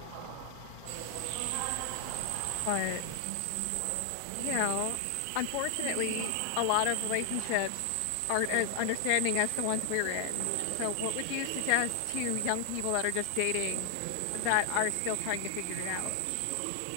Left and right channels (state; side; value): different; both; correlation 0.00